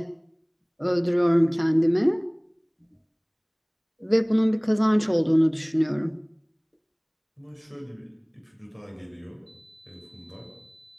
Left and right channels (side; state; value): both; identical; correlation 1.00